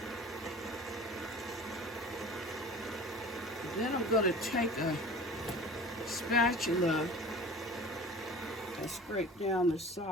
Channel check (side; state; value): both; normal; correlation 0.40